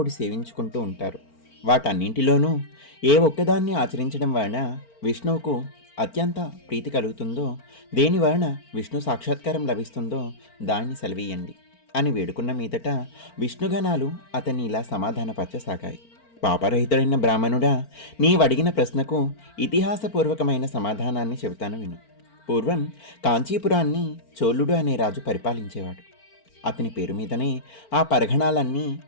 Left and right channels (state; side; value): late; right; 4.4 ms